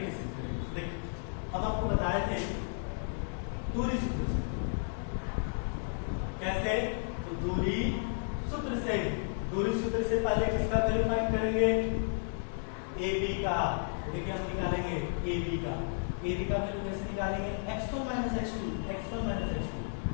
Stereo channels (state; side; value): silent; right; digital silence